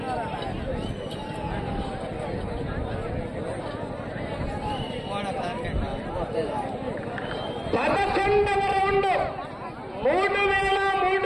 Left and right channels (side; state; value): both; identical; correlation 1.00